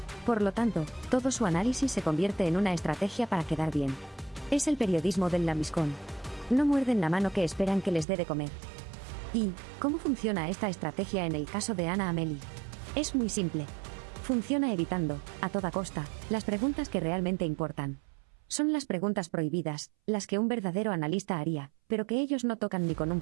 Por lo tanto, todo su análisis se convierte en una estrategia para quedar bien. Es el periodismo del lambiscón. No muerden la mano que esperan que les dé de comer. ¿Y cómo funciona esta estrategia en el caso de Anna Amelie? Es muy simple. Funciona evitando, a toda costa, las preguntas que realmente importan. Son las preguntas prohibidas, las que un verdadero analista haría, pero que ellos no tocan ni con un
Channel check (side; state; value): left; drops out; at 8.1 s